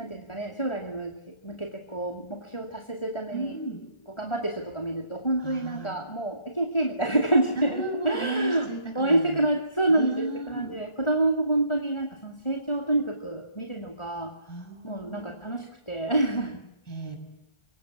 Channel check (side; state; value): right; late; 1.4 ms